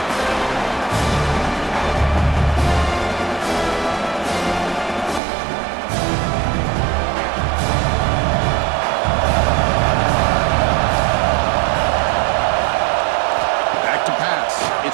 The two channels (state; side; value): drops out; left; at 5.2 s